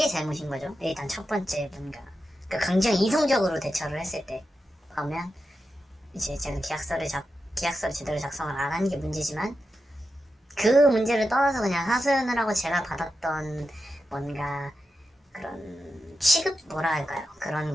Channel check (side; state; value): both; normal; correlation 0.89